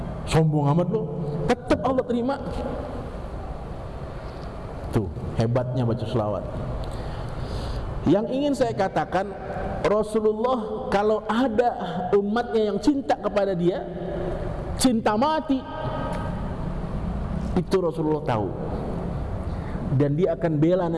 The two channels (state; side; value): identical; both; correlation 1.00